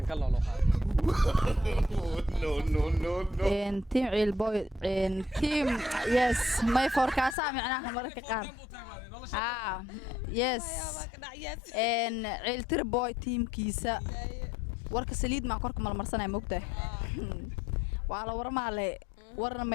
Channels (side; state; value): right; drops out; at 7.4 s